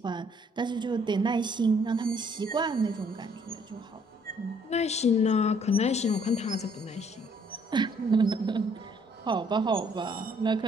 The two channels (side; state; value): both; normal; correlation 0.64